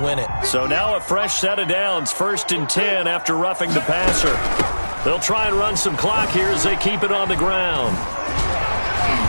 it. So now a fresh set of downs, 1st and 10 after roughing the passer. They'll try and run some clock here as they keep it on the ground.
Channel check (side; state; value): both; inverted; correlation -1.00